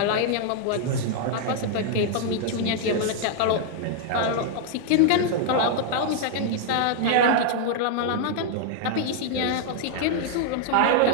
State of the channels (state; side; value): different; both; correlation 0.00